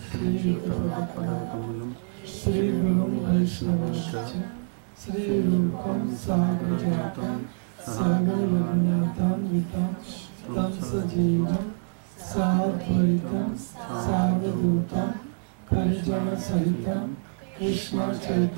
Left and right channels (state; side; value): silent; left; digital silence